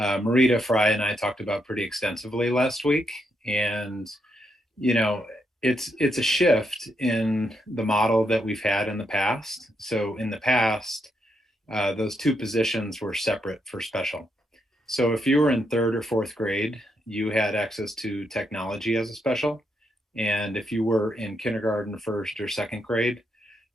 Fry, and I talked about pretty extensively last week. And, it's a shift in the model that we've had in the past. So in the past, those two positions were separate for special. So if you were in 3rd or 4th grade, you had access to technology as a special. And if you were in kindergarten, 1st or 2nd grade,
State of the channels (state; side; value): normal; both; correlation 0.79